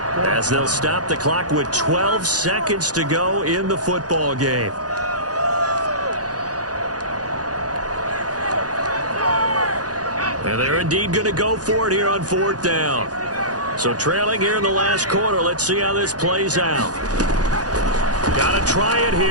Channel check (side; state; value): left; late; 0.68 ms